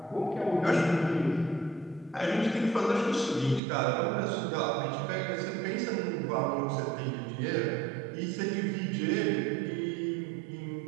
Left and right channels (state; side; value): drops out; left; at 3.6 s